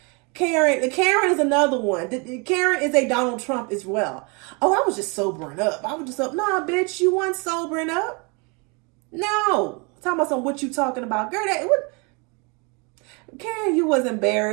Karen is another one. Karen is a Donald Trump as well. Oh, I was just sobering up. I was just up. Nah, bitch, you weren't sobering up. No, talking about what you talking about, girl. Karen, you was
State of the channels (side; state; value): left; quieter; 31.5 dB